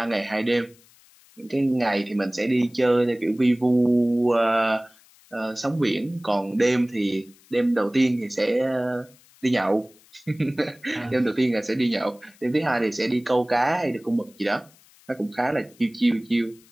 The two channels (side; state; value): left; noise; hiss, 28 dB below the sound